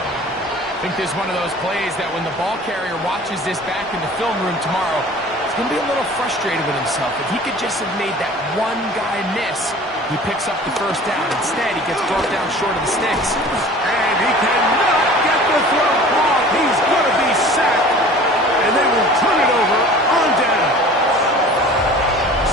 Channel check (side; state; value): both; normal; correlation 0.44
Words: think this is one of those plays that when the ball carrier watches this back in the film room tomorrow, he's going to be a little frustrated with himself. If he could just have made that one guy miss, he picks up the 1st down. Instead, he gets brought down short of the sticks. And he cannot get the throw off. He's going to be sacked. And they will turn it over on down.